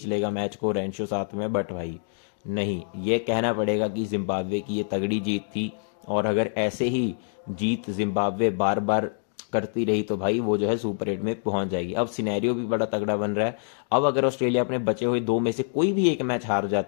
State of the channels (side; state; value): right; silent; digital silence